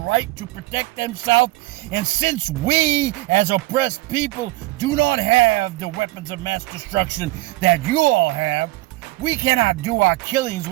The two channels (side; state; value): left; quieter; 19.5 dB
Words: to protect themselves? And since we, as oppressed people, do not have the weapons of mass destruction that you all have, we cannot do our killings